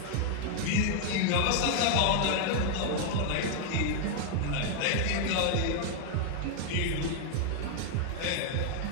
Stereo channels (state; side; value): different; both; correlation 0.00